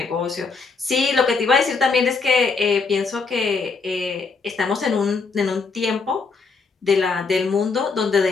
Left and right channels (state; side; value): quieter; right; 4.6 dB